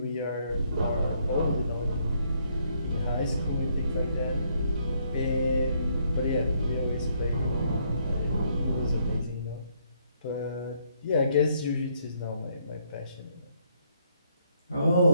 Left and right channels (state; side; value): inverted; both; correlation -0.71